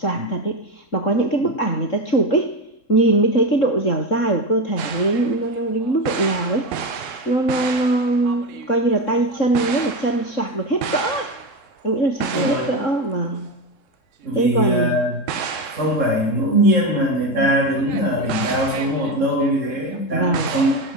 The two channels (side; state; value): right; late; 3.7 ms